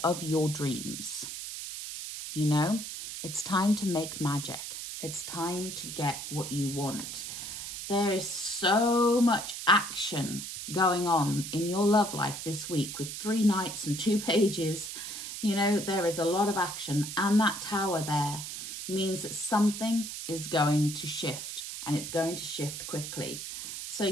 of your dreams. You know, it's time to make magic. It's time to get what you want. There is so much action going on in your love life this week with 3 knights and 2 pages. You know, there is a lot of action, and that tower there means that something is going to shift, and it's going to shift quickly. So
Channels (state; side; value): noise; right; hiss, 7 dB below the sound